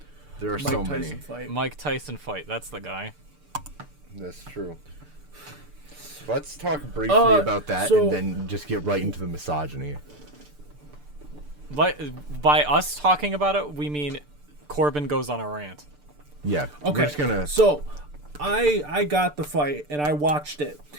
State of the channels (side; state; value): left; late; 6.8 ms